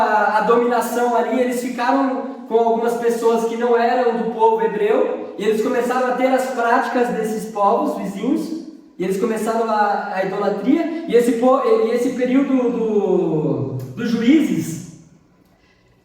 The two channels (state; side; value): identical; both; correlation 1.00